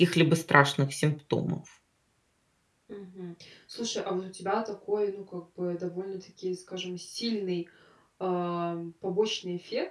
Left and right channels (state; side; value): identical; both; correlation 1.00